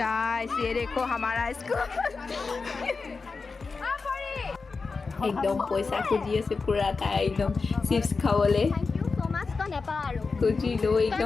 ये देखो हमारा स्कूल एकदम पैसा खुजी আছে পুৰা তাই একদম চিপছ খাবলে খুজি লৈ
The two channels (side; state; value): right; quieter; 4.4 dB